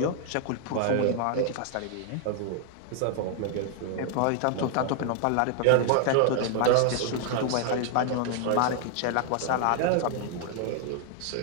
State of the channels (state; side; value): different; both; correlation 0.00